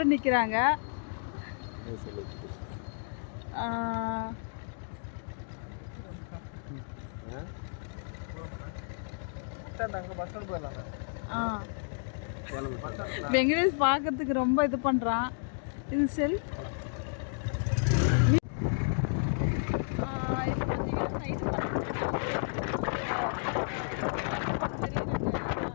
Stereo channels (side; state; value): right; silent; digital silence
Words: நிற்கிறாங்க. வெங்கடேஷ் பார்க்கறதுக்கு ரொம்ப இது பண்ணுறான். இது செல்